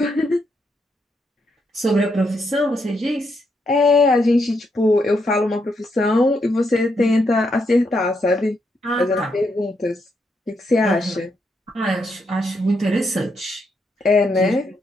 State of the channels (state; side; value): normal; both; correlation 0.79